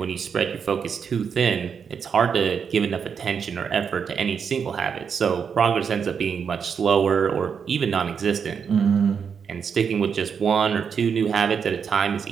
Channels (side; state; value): left; quieter; 6.7 dB